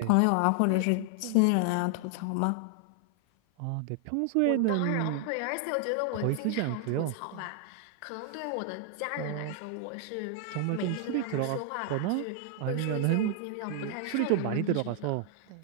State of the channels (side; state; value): both; different; correlation 0.00